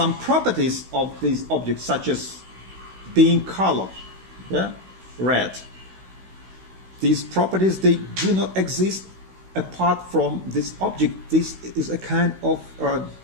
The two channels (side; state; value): left; late; 16 ms